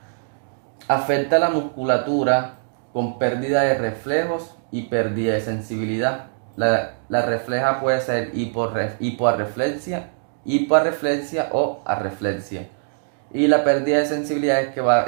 Afecta la musculatura con pérdida de reflejos y pérdida de sensibilidad. La refleja puede ser hipoarreflexia o arreflexia. Y la pérdida de sensibilidad es que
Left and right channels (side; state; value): left; silent; digital silence